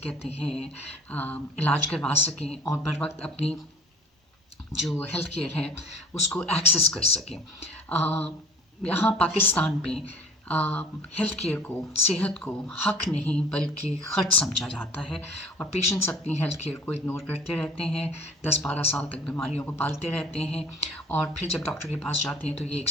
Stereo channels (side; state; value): both; normal; correlation 0.48